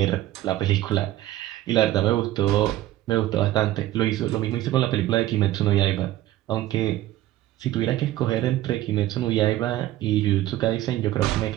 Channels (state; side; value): quieter; left; 14.8 dB